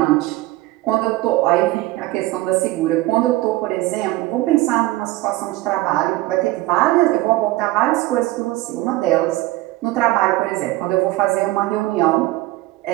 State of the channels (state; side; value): quieter; left; 18.5 dB